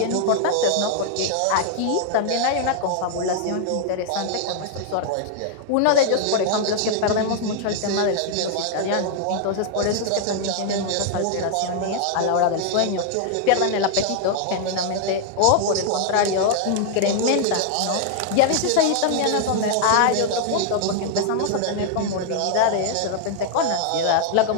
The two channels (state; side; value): different; both; correlation 0.00